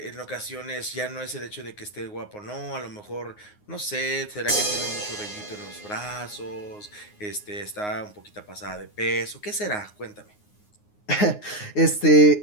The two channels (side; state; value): right; late; 9.6 ms